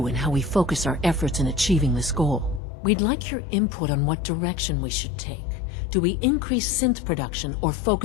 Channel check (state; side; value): drops out; right; at 2.6 s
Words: and how we focus our efforts in achieving this goal. We'd like your input on what direction we should take. Do we increase synth production or